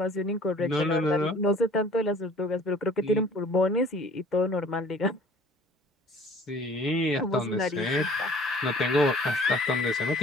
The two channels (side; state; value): both; normal; correlation 0.51